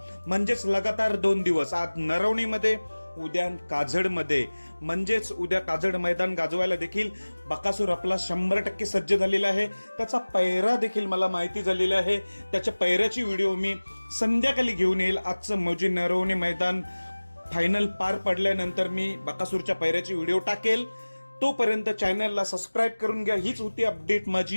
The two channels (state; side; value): inverted; both; correlation -1.00